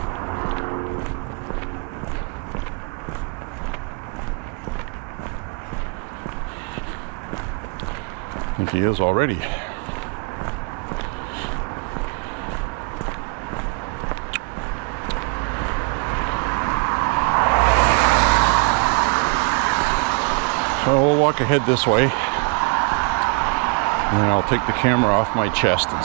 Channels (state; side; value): quieter; left; 33.5 dB